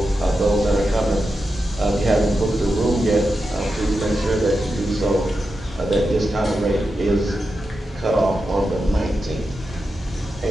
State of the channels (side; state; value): both; normal; correlation 0.89